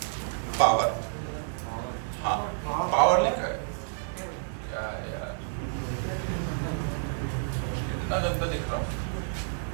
पावर, हाँ पावर लिखा है क्या यार, कितना गंदा लिख रहा हूँ।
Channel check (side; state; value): left; silent; 58 dB below the other